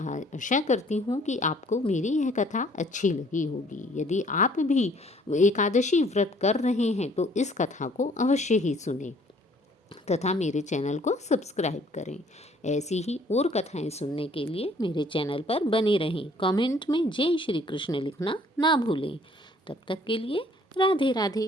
करती हूँ कि आपको मेरी यह कथा अच्छी लगी होगी। यदि आप भी एकादशी व्रत कर रहे हैं तो इस कथा को अवश्य ही सुनें तथा मेरे चैनल को सब्सक्राइब करें। ऐसी ही और कथाएं सुनने के लिए मेरे चैनल पर बने रहें। कमेंट में जय श्री कृष्ण लिखना ना भूलें। तब तक के लिए राधे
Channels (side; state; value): both; normal; correlation 0.59